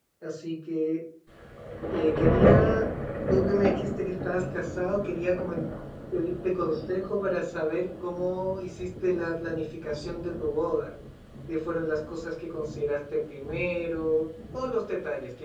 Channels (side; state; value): both; identical; correlation 1.00